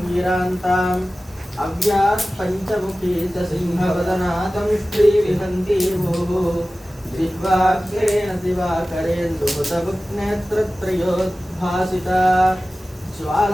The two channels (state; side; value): normal; both; correlation 0.96